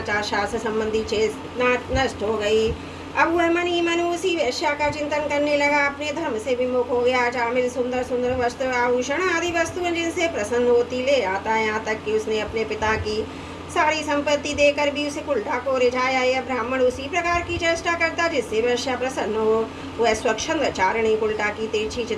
शास्त्र संबंधी चेतना नष्ट हो गई। अब वह मन ही मन उसी वैश्या का चिंतन करने लगा। अपने धर्म से विमुख हो गया। अजामिल सुंदर सुंदर वस्त्र आभूषण आदि वस्तुएं जिनसे प्रसन्न होती ले आता है। यहाँ तक कि उसने अपने पिता की सारी संपत्ति देकर भी उसे उल्टा को रिझाया। यह ब्राह्मण उसी प्रकार की चेष्टा करता जिससे वैश्या प्रसन्न हो। वह स्वच्छंद चारणी उल्टा की तिरछी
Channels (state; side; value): identical; both; correlation 1.00